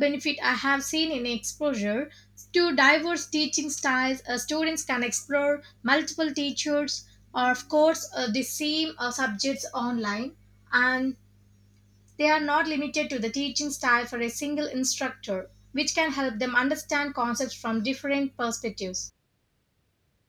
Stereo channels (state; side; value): identical; both; correlation 1.00